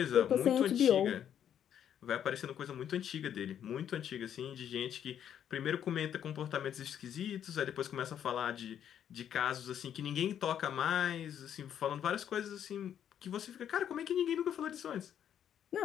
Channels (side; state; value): right; quieter; 9.5 dB